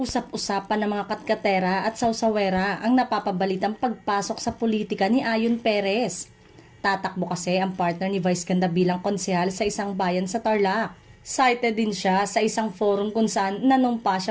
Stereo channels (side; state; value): both; identical; correlation 1.00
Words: Usap-usapan ng mga katkatera at sausawera ang napapabalitang pagpasok sa politika ni Ayon Perez. Tatakbo kasi ang partner ni Vice Ganda bilang konsehal sa isang bayan sa Tarlac. Cited din siya sa isang forum kung saan nanumpa